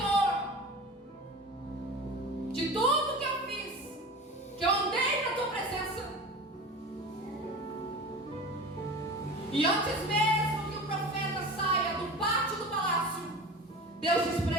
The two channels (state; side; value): normal; both; correlation 0.34